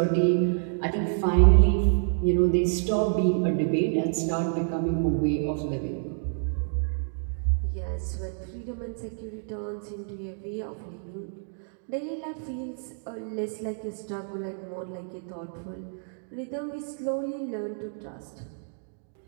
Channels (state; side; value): silent; left; digital silence